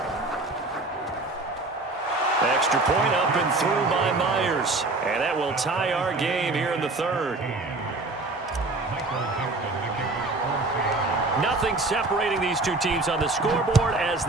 Extra point up and through by Myers. And that will tie our game here in the 3rd. Nothing separating these two teams on the scoreboard as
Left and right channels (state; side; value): quieter; left; 3.1 dB